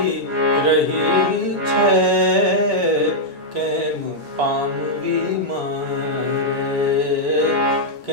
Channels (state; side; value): normal; both; correlation -0.05